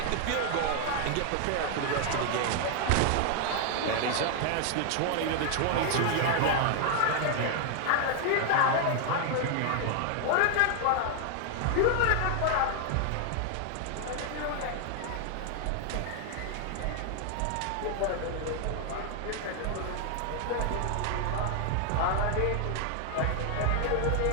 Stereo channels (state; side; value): different; both; correlation 0.00